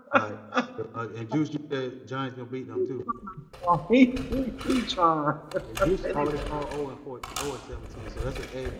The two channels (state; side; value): identical; both; correlation 1.00